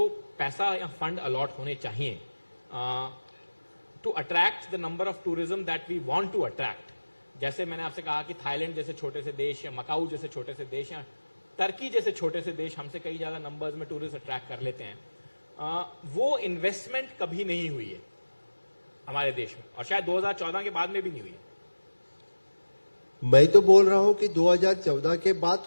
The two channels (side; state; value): both; inverted; correlation -1.00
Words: पैसा या फंड अलॉट होने चाहिए to attract the number of tourism that we want to attract, जैसे मैंने आपसे कहा कि थाईलैंड जैसे छोटे से देश या मकाऊ जैसे छोटे से देश या टर्की जैसे छोटे से देश हमसे कई ज्यादा नंबर्स में टूरिस्ट अट्रैक्ट कर लेते हैं, वो इन्वेस्टमेंट कभी नहीं हुई है हमारे देश में, और शायद 2014 के बाद में भी नहीं हुई है. मैं तो बोल रहा हूं कि 2014 के बाद